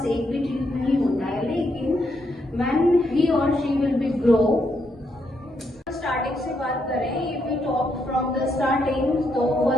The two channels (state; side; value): normal; both; correlation 0.78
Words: एक भी teeth नहीं होता है, लेकिन when he or she will be grow, starting से बात करें, if we talk from the starting, तो